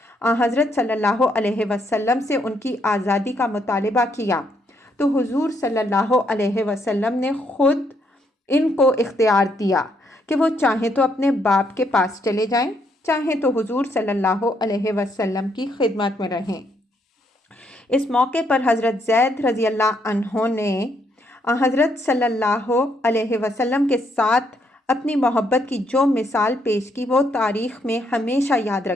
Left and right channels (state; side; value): normal; both; correlation 0.73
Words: حضرت صلی اللہ علیہ وسلم سے ان کی آزادی کا مطالبہ کیا تو حضور صلی اللہ علیہ وسلم نے خود ان کو اختیار دیا کہ وہ چاہیں تو اپنے باپ کے پاس چلے جائیں، چاہیں تو حضور صلی اللہ علیہ وسلم کی خدمت میں رہیں۔ اس موقع پر حضرت زید رضی اللہ عنہ نے حضرت صلی اللہ علیہ وسلم کے ساتھ اپنی محبت کی جو مثال پیش کی وہ تاریخ میں ہمیشہ یاد